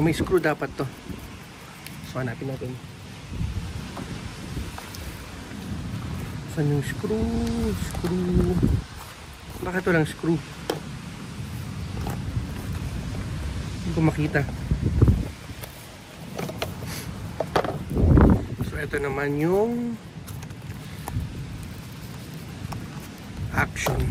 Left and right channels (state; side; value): identical; both; correlation 1.00